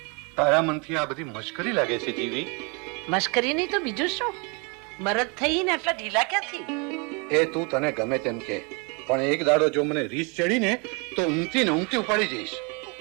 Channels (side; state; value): left; quieter; 31.8 dB